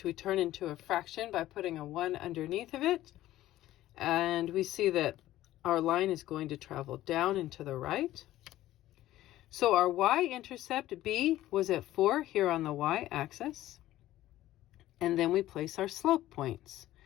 we turn into a fraction by putting a 1 underneath of it. And we see that our line is going to travel down and to the right. So our y-intercept, b, was at 4 here on the y-axis. And then we place our slope points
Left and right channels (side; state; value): right; quieter; 14.7 dB